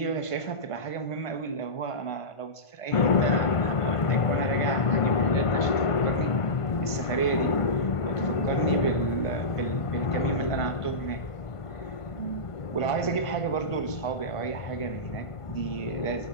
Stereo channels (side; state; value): right; late; 1.5 ms